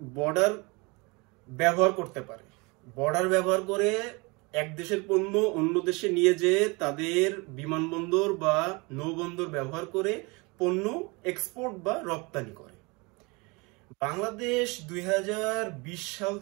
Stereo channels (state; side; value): quieter; left; 27.4 dB